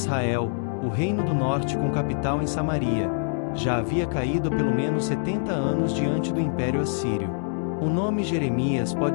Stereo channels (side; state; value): right; silent; digital silence